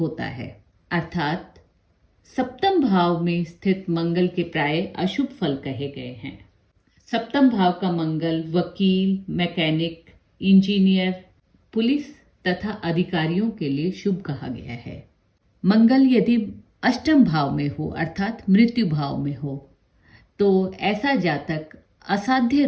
है। अर्थात सप्तम भाव में स्थित मंगल के प्राय अशुभ फल कहे गए हैं। सप्तम भाव का मंगल वकील, मैकेनिक, इंजीनियर, पुलिस तथा अधिकारियों के लिए शुभ कहा गया है। मंगल यदि अष्टम भाव में हो अर्थात मृत्यु भाव में हो तो ऐसा जातक असाध्य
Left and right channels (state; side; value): identical; both; correlation 1.00